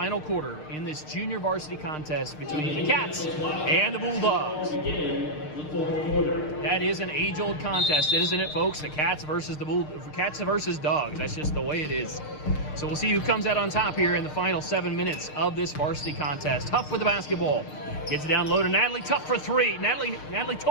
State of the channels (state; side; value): late; right; 6.6 ms